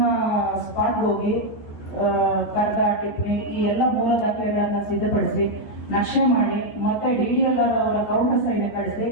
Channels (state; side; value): late; right; 14 ms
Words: ಸ್ಪಾಟ್ ಹೋಗಿ ಕರ್ದ ಟಿಪ್ಪಣಿ ಈ ಎಲ್ಲ ಮೂಲ ದಾಖಲೆಗಳನ್ನ ಸಿದ್ಧಪಡಿಸಿ ನಕ್ಷೆ ಮಾಡಿ ಮತ್ತೆ DDLR ಅವರ ಕೌಂಟರ್ ಸೈನ್ ಕಳಿಸಿ